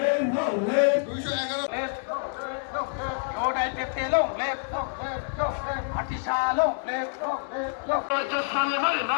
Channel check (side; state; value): right; silent; digital silence